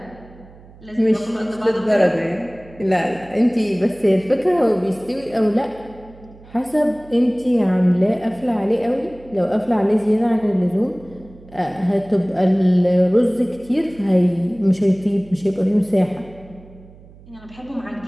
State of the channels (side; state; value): right; noise; hum, 22 dB below the sound